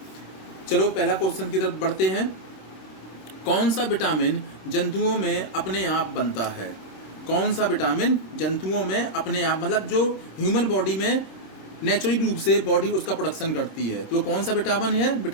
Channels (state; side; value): late; right; 26 ms